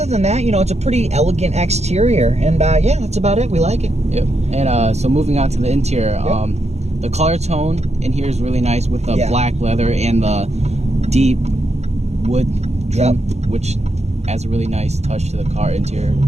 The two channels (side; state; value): left; late; 0.32 ms